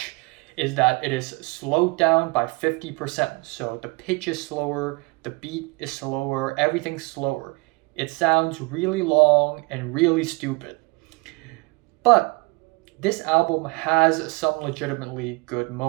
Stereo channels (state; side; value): quieter; left; 27.3 dB